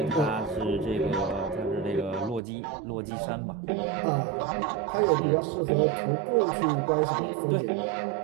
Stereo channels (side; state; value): left; drops out; at 2.4 s